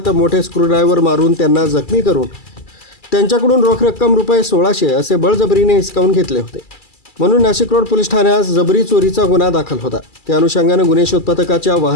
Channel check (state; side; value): late; right; 2.3 ms